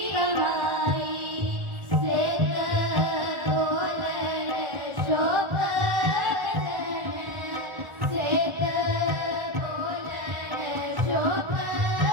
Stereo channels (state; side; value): late; left; 1.4 ms